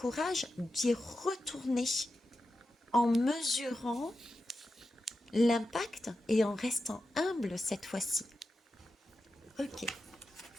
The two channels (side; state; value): both; normal; correlation 0.90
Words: d'y retourner en mesurant l'impact et en restant humble cette fois-ci. Ok,